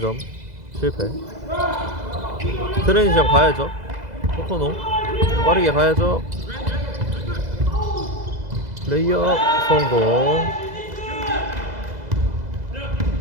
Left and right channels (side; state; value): left; late; 2.0 ms